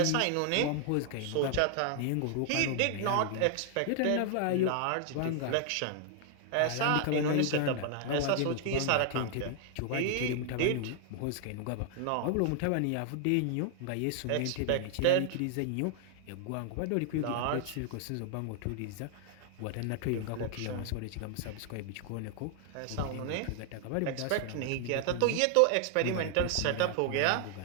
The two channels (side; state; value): both; different; correlation 0.00